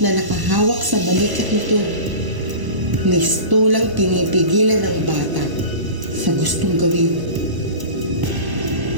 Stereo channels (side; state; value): left; late; 1.0 ms